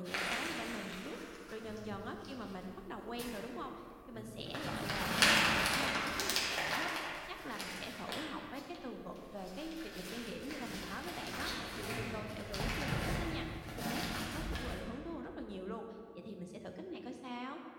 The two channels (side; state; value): both; identical; correlation 1.00